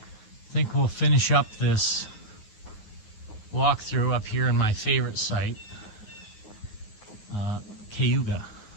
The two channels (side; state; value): right; late; 9.5 ms